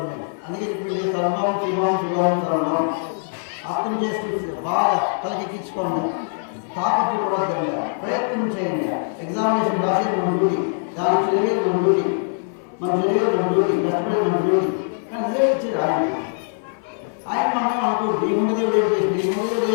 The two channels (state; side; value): silent; right; 57 dB below the other